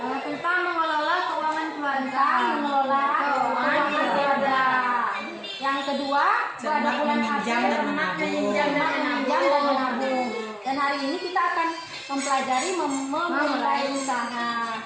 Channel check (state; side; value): identical; both; correlation 1.00